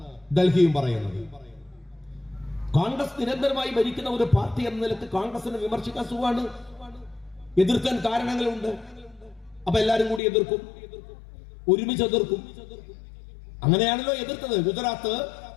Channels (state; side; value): drops out; right; at 10.2 s